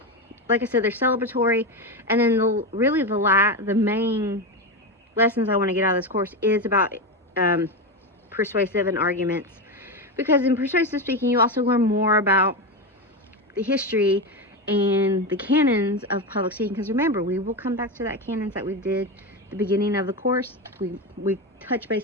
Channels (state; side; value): normal; both; correlation 0.15